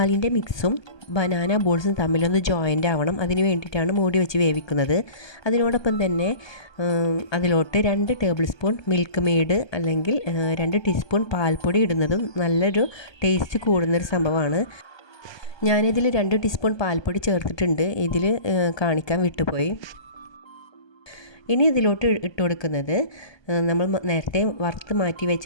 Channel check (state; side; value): late; right; 1.2 ms